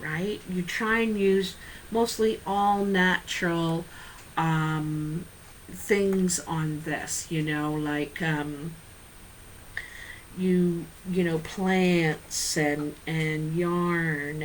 You try and use mostly all natural things on this, like plants and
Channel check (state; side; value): identical; both; correlation 1.00